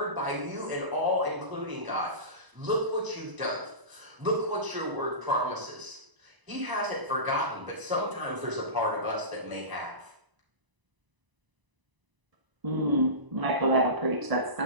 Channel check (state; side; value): late; left; 1.0 ms